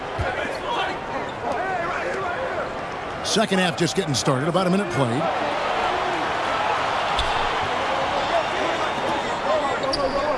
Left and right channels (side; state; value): both; identical; correlation 1.00